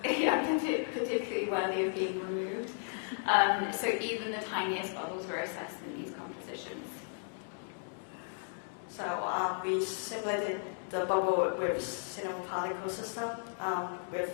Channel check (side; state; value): right; silent; digital silence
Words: particularly worthy of being removed. So even the tiniest bubbles were assessed in these compositions. So we simulated the bubble with cinema particle system with